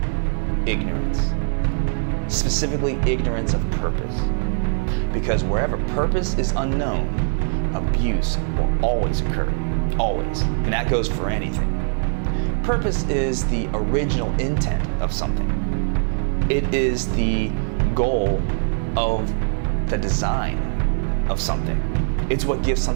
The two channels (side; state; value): left; silent; 64 dB below the other